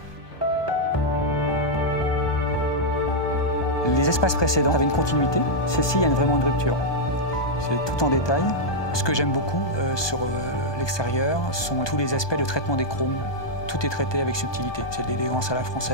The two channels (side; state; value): right; late; 1.2 ms